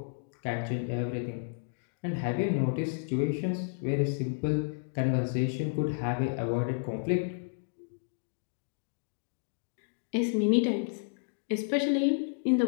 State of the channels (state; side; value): silent; right; digital silence